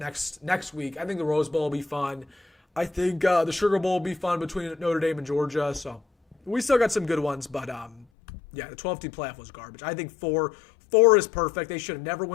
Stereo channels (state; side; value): drops out; right; at 8.1 s